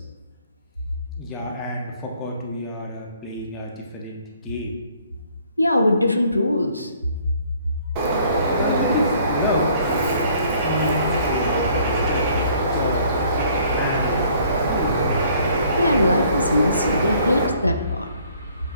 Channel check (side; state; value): both; inverted; correlation -0.60